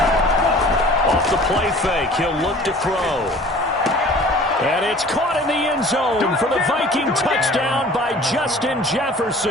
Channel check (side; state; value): both; normal; correlation 0.47